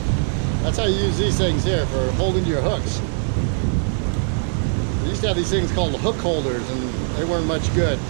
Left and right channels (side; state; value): left; silent; 65 dB below the other